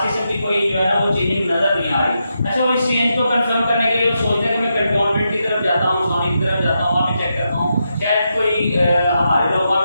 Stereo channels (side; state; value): both; inverted; correlation -0.85